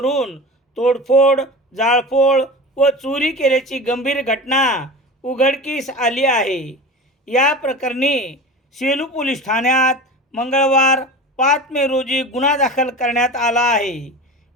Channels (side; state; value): both; normal; correlation 0.32